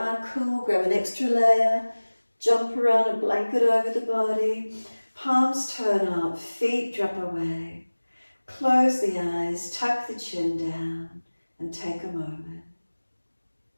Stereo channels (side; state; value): both; inverted; correlation -1.00